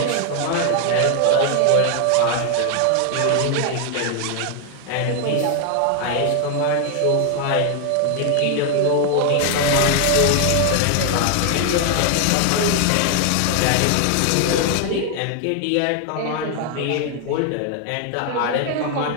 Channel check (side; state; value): both; different; correlation 0.00